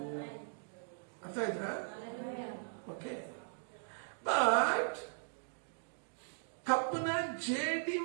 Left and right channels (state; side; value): silent; left; digital silence